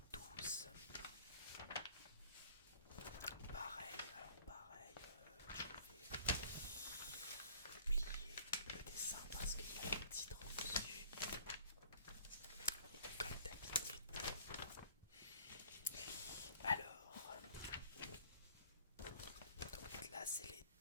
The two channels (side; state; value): both; inverted; correlation -0.52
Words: 12. Pareil, je vais plier le dessin parce qu'il y a le titre dessus, comme d'habitude. Alors, donc là c'est les